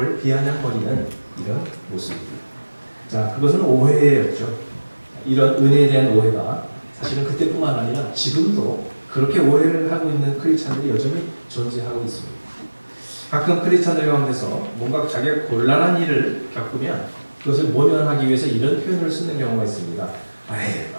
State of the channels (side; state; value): both; inverted; correlation -1.00